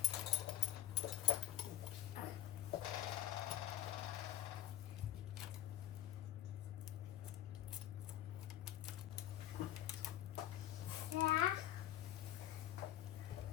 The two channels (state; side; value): quieter; right; 12.8 dB